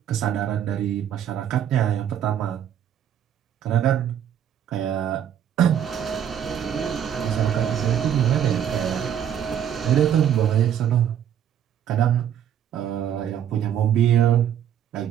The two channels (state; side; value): quieter; left; 9.5 dB